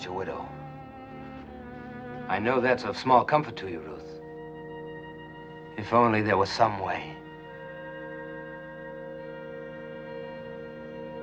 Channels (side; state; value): both; identical; correlation 1.00